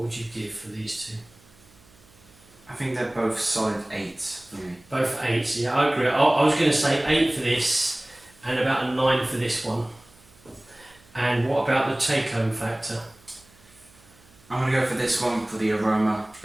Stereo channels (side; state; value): right; noise; hum, 28 dB below the sound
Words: you give for these two? I think they're both solid 8s for me. Both 8s, yeah, I agree. I was going to say 8 for this and about a 9 for this one. And what about the take-home factor? I'm going to go for this one for the aroma,